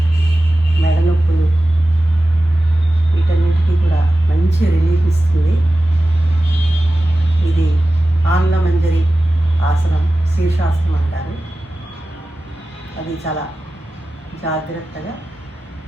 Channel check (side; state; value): both; normal; correlation 0.95